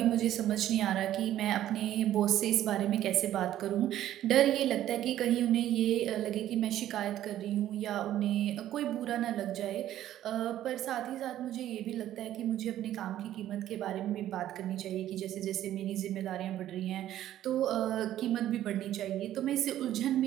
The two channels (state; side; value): quieter; left; 12.5 dB